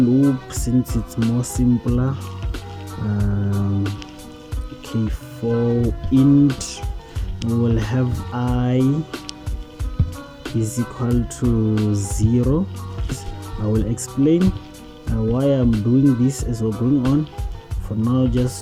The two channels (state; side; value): identical; both; correlation 1.00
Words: since it's more simpler. Okay, for int we will have I is equal to 0. I will explain why I'm doing this as we're going on. For now,